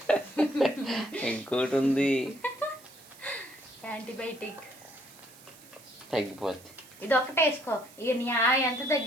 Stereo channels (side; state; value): right; noise; hiss, 22 dB below the sound